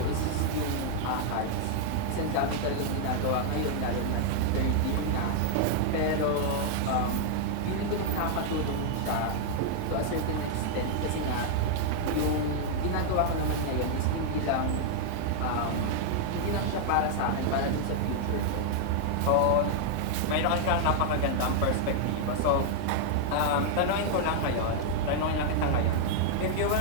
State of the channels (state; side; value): different; both; correlation -0.01